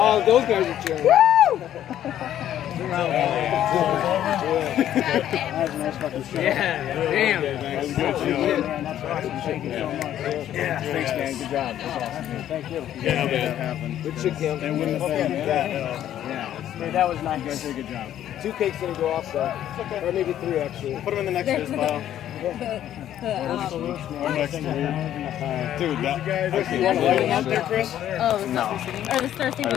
those guys are cheering. Yeah. Yeah, damn. was good. That's awesome. Thank you so much. Yeah, thanks, man. Good job. That's awesome. Dude. Thank you. Yeah, that happened. Good shit, Kim. They wouldn't have been that. Yeah. Dude, that was nice. You guys did a good job. 2 cakes didn't go off, so. Or maybe 3, actually. Put them in the next year's pile. Dude, that. You want to light them out there, Chris? Oh, no. Or the Star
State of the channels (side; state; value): right; quieter; 11.4 dB